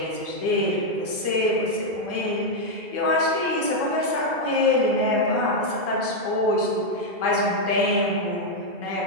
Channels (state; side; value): late; left; 1.3 ms